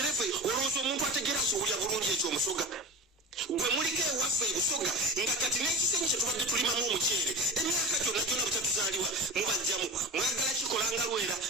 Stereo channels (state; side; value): normal; both; correlation 0.31